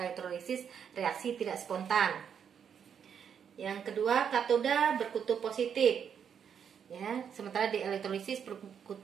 elektrolisis reaksi tidak spontan. Yang kedua, katoda berkutub positif, ya, sementara di elektrolisis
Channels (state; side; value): quieter; left; 7.8 dB